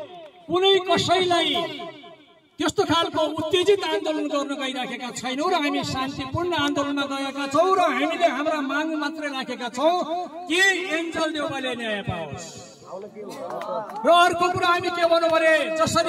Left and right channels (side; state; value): both; identical; correlation 1.00